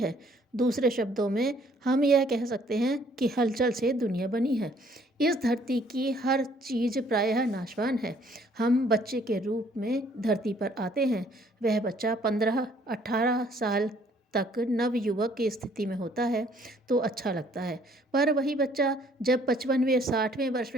दूसरे शब्दों में हम यह कह सकते हैं कि हलचल से दुनिया बनी है। इस धरती की हर चीज़ प्रायः नाशवान है। हम बच्चे के रूप में धरती पर आते हैं। वह बच्चा 15-18 साल तक नवयुवक की स्थिति में होता है तो अच्छा लगता है, पर वही बच्चा जब 55वें-60वें वर्ष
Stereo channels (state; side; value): normal; both; correlation 0.62